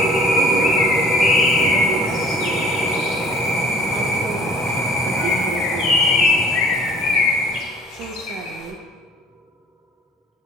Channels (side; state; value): both; normal; correlation 0.51